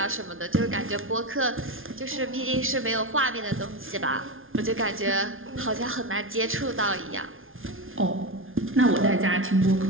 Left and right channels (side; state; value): left; late; 0.59 ms